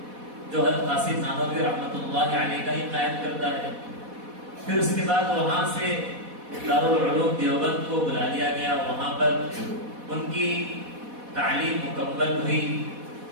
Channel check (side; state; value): left; late; 4.1 ms